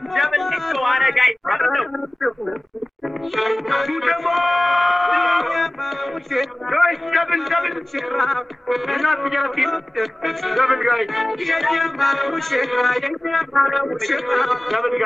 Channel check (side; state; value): both; normal; correlation 0.97